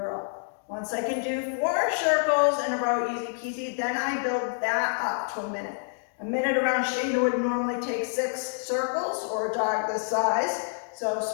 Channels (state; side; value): silent; right; digital silence